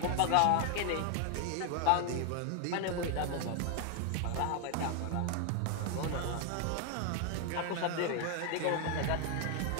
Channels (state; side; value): different; both; correlation 0.00